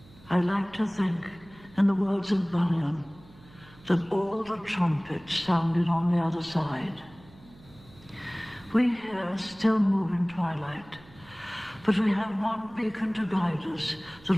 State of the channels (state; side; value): noise; right; hum, 24 dB below the sound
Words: I like to think, in the words of Bunyan, that all the trumpets sounded on the other side. We here still move in twilight, But we have one beacon to guide us